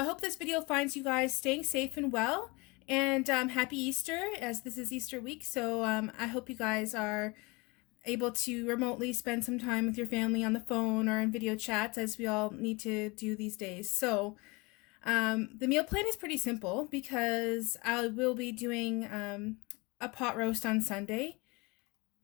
hope this video finds you guys staying safe and well, and happy Easter, as this is Easter week. So I hope you guys are able to remotely spend some time with your family on the phone or in video chats, as we all need to do these days. So the meal plan is pretty simple because I will be doing a pot roast on Sunday.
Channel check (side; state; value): right; quieter; 26.0 dB